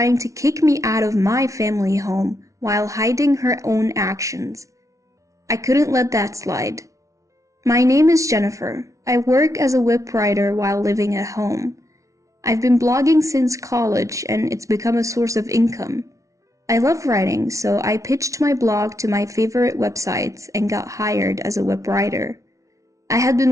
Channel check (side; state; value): left; late; 0.15 ms